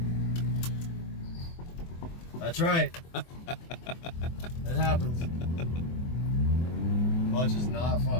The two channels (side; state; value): right; late; 24 ms